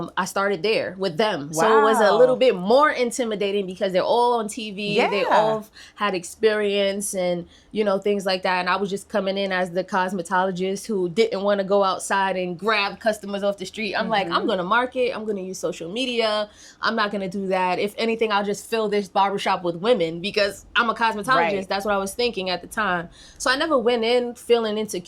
started there with them. Wow. So it was a little bit more intimidating because they're all on TV. Yeah. They all had experience and, you know, things like that. And I was just coming in as the cosmetologist who didn't want to go outside and grab customers off the street. I'm like, I'm going to market. I'm going to use social media. I'm not going to do that. If anything, I'll just fill this barbershop with women because I'm a cosmetologist. Right. That's what I was thinking at the time. So I never went in feeling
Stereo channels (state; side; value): identical; both; correlation 1.00